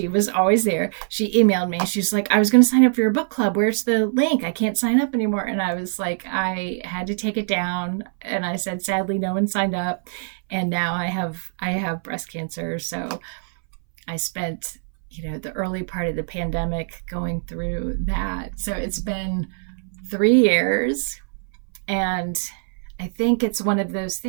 was always there, she emailed me. She's like, I was going to sign up for your book club. Where's the link? I can't sign up anymore. And I was like, I had to take it down. And I said, sadly, no one signed up. And now I have breast cancer. So I spent, the early part of the pandemic going through that. So it's been 3 years. And I think it's one of those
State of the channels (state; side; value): silent; left; 62 dB below the other